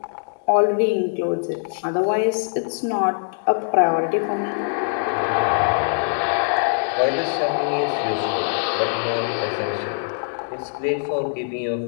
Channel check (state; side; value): silent; right; digital silence